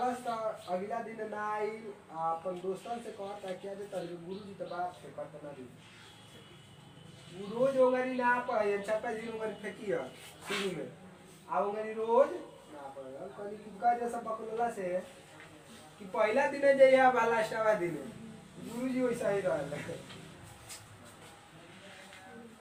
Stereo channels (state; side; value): identical; both; correlation 1.00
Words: तो अगला दिन ना आई अपन दोस्तन से कहता क्या जे तेरे गुरुजी तो बात से करता ना दी वो रोज ओगरी ना पढ़े छपा जी ओगरी फेंकी है शुरू में आ ओगरी रोज ना पढ़े कनी कुका जैसा बकलोला से कि पहला दिन जइया बा लास्टवा दिन गुरुजी वैसा ही रहल